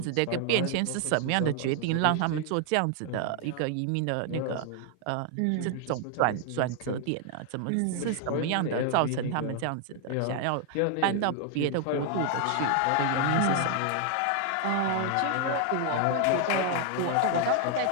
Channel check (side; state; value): both; different; correlation 0.00